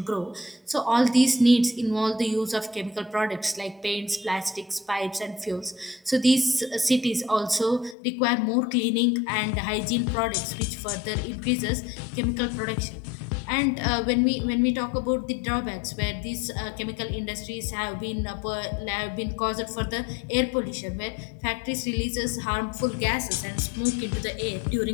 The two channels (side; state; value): right; drops out; at 8.0 s